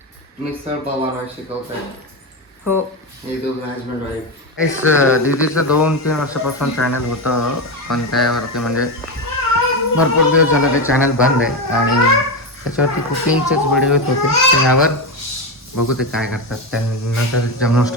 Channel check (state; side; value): normal; both; correlation 0.14